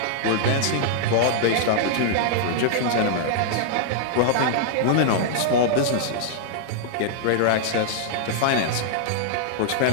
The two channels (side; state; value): both; different; correlation -0.01